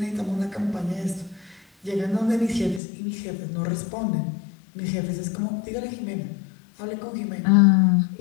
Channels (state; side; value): drops out; right; at 2.8 s